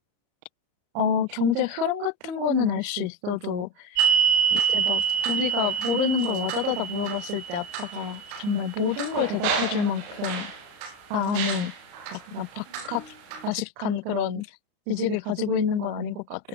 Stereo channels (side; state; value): left; late; 35 ms